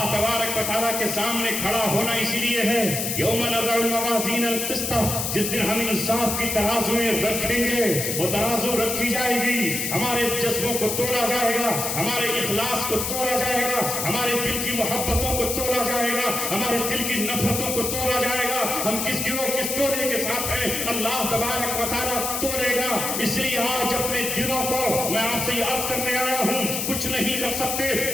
تبارک و تعالیٰ کے سامنے کھڑا ہونا اسی لیے ہے۔ یوم نضع الموازین القسط، جس دن ہم انصاف کی ترازویں رکھیں گے، وہ ترازو رکھی جائے گی، ہمارے جذبوں کو تولا جائے گا، ہمارے اخلاص کو تولا جائے گا، ہمارے دل کی محبتوں کو تولا جائے گا، ہمارے دل کی نفرتوں کو تولا جائے گا، ہم کس گروہ کس ٹولے کے ساتھ ہیں اللہ تبارک و تعالیٰ تولے گا۔ اس لیے آج اپنے دلوں کو میں آپ سے یہ عرض کرنے آیا ہوں، کچھ نہیں کر سکتے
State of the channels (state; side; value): noise; left; hiss, 2 dB below the sound